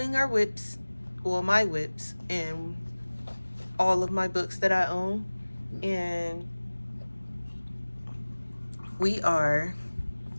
our whips, well, my whips, and all of my books that I own. And I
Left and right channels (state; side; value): inverted; both; correlation -1.00